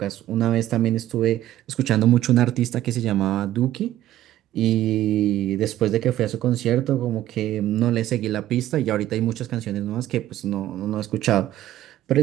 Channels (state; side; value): quieter; left; 13.5 dB